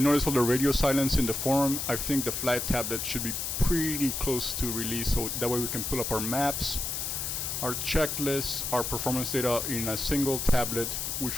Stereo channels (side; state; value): left; noise; hiss, 3 dB below the sound